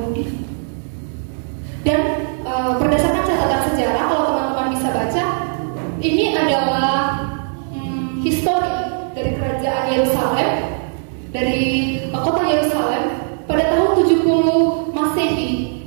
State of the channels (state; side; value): silent; left; 67 dB below the other